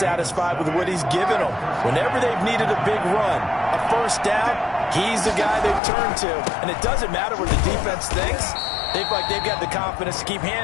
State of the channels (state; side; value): drops out; right; at 5.8 s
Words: with what he's given them. Whenever they've needed a big run, a first down, he's the guy they've turned to. And it doesn't matter what the defense thinks. They feel like they've got the confidence to keep